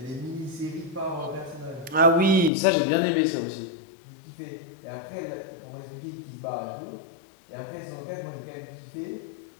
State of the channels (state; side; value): drops out; right; at 2.5 s